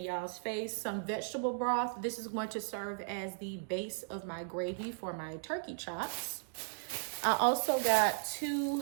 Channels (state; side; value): silent; left; digital silence